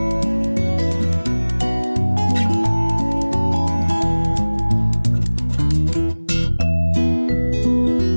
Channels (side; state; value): both; inverted; correlation -1.00